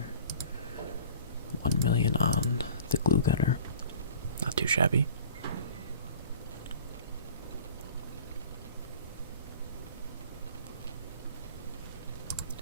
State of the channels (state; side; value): inverted; both; correlation -0.45